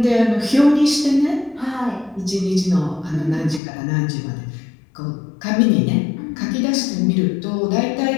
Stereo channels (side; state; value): right; drops out; at 3.6 s